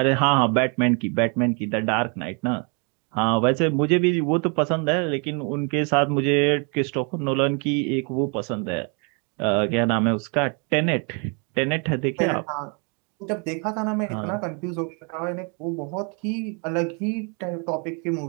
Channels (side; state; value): left; quieter; 35.7 dB